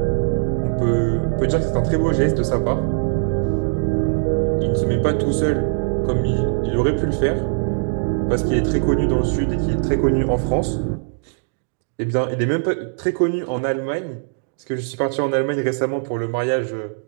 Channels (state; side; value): silent; left; digital silence